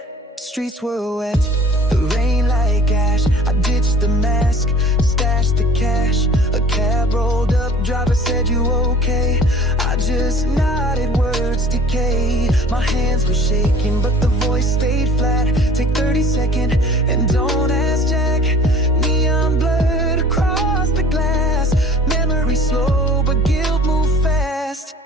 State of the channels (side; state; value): both; normal; correlation 0.48